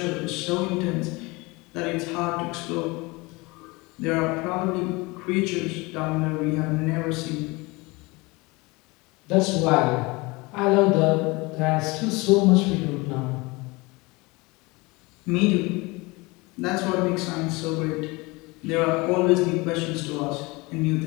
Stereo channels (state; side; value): quieter; right; 24.5 dB